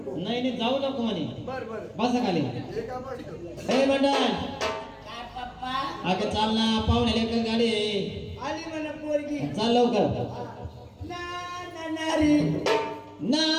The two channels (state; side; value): identical; both; correlation 1.00